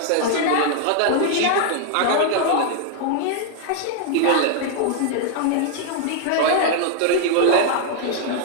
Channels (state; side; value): different; both; correlation 0.00